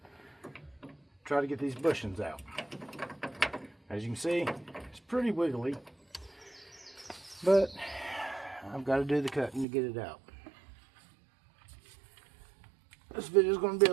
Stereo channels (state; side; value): drops out; left; at 9.7 s